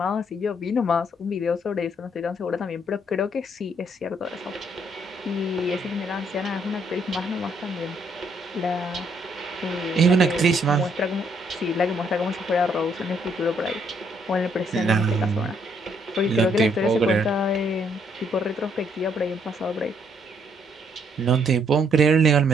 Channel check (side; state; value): both; normal; correlation 0.70